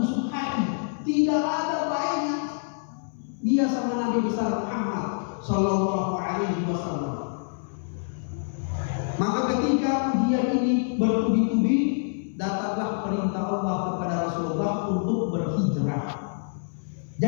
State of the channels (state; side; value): silent; right; 61 dB below the other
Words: busuk hati, tidak ada baiknya dia sama Nabi besar Muhammad sallallahu alaihi wasallam. Maka ketika ujian ini bertubi-tubi, datanglah perintah Allah kepada Rasulullah untuk berhijrah.